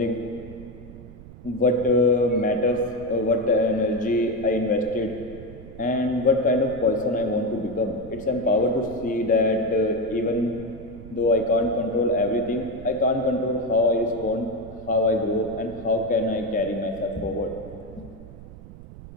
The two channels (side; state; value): right; noise; rumble, 16 dB below the sound